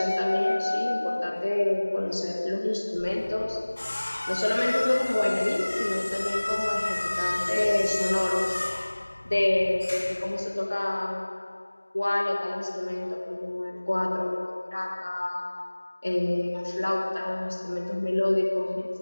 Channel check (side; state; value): both; inverted; correlation -1.00